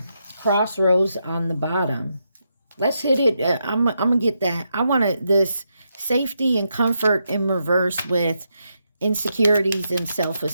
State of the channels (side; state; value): both; inverted; correlation -0.83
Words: Crossroads on the bottom. Let's hit it. I'm going to get that. I want this safety and comfort in reverse with insecurities and